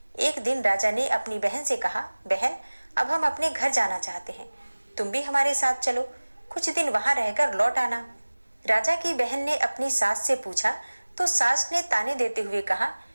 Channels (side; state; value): both; inverted; correlation -1.00